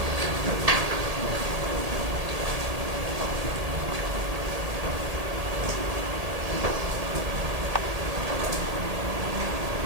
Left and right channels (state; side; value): late; left; 1.8 ms